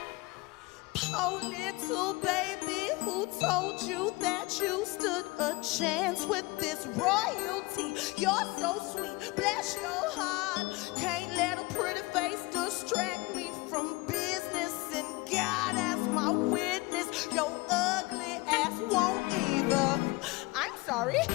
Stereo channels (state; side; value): quieter; right; 23.5 dB